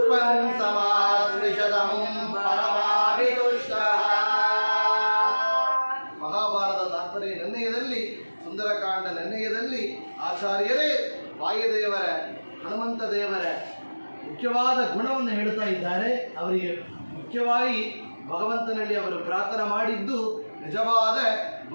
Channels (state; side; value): inverted; both; correlation -1.00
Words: ಸಮಾಶ್ರಿಷತಮಂ ಪರಮಾಭಿತುಷ್ಟಃ. ಮಹಾಭಾರತ ತಾತ್ಪರ್ಯ ನಿರ್ಣಯದಲ್ಲಿ, ಸುಂದರಕಾಂಡ ನಿರ್ಣಯದಲ್ಲಿ ಆಚಾರ್ಯರೇ ವಾಯುದೇವರ, ಹನುಮಂತ ದೇವರ ಮುಖ್ಯವಾದ ಗುಣವನ್ನು ಹೇಳ್ತಾ ಇದ್ದಾರೆ. ಅವರಿಗೆ ಮುಖ್ಯವಾಗಿ ಭಗವಂತನಲ್ಲಿ ಅವರು ಪ್ರಾರ್ಥನೆ ಮಾಡಿದ್ದು ನಿಜವಾದ